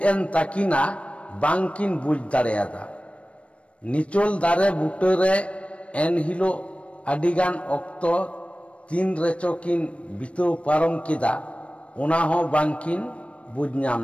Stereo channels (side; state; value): right; late; 0.062 ms